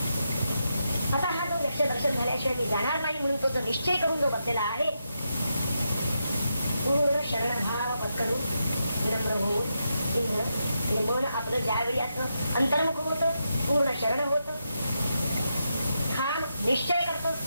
आता हा जो यक्ष दर्शन झाल्याशिवाय मी जाणार नाही म्हणून तो जो निश्चय करून जो बसलेला आहे पूर्ण शरणभाव पत्करून विनम्र होऊन इंद्र हे मन आपलं ज्यावेळी असं अंतर्मुख होतं पूर्ण शरण होतं ठाम निश्चय करतो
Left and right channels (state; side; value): inverted; both; correlation -0.84